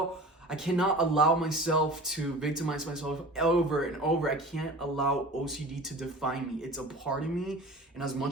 allow myself to victimize myself over and over. I can't allow OCD to define me. It's a part of me, and as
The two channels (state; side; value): normal; both; correlation 0.39